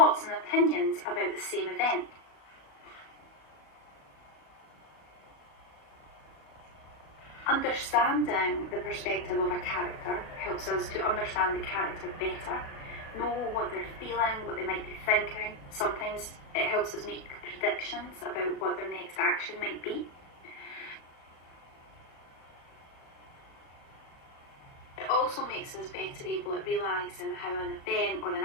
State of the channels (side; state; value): right; late; 36 ms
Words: and opinions about the same event. Understanding the perspective of a character helps us to understand the character better, know what they're feeling, what they might be thinking. Sometimes it helps us make predictions about what their next action might be. It also makes us better able at realising how an event or